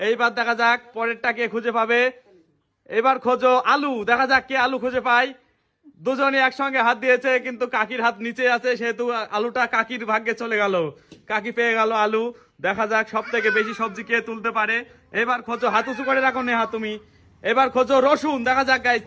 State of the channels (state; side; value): identical; both; correlation 1.00